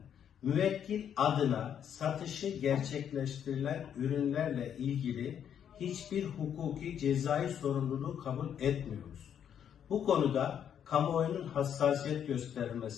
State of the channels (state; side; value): quieter; right; 8.9 dB